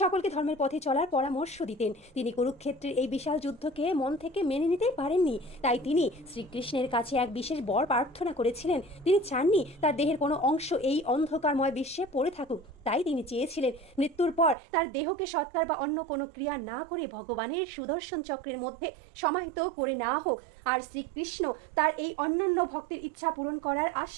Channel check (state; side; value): drops out; left; at 14.6 s